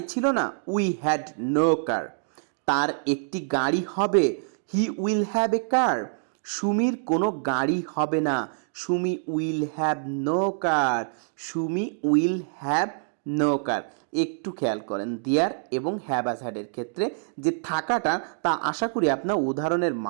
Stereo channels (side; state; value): left; silent; digital silence